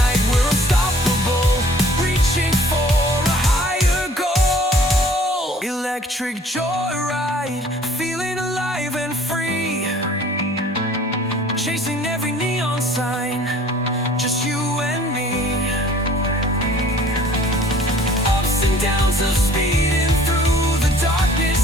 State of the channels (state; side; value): normal; both; correlation 0.53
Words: electric joyride, feeling alive and free, chasing every neon sign, just you and me. Ups and downs of speeding through the